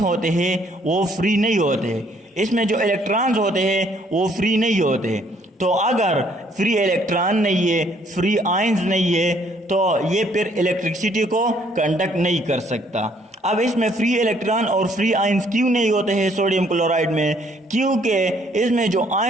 होते हैं वो फ्री नहीं होते, इसमें जो इलेक्ट्रॉन्स होते हैं वो फ्री नहीं होते। तो अगर फ्री इलेक्ट्रॉन नहीं है, फ्री आयंस नहीं है, तो ये फिर इलेक्ट्रिसिटी को कंडक्ट नहीं कर सकता। अब इसमें फ्री इलेक्ट्रॉन और फ्री आयंस क्यों नहीं होते हैं सोडियम क्लोराइड में, क्योंकि इसमें जो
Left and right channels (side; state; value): both; normal; correlation 0.64